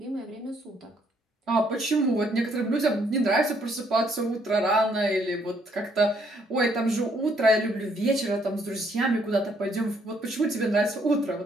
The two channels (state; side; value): normal; both; correlation 0.68